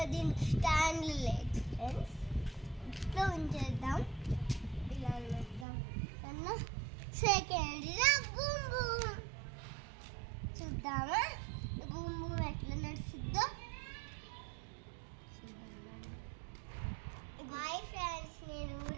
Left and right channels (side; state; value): left; drops out; at 5.7 s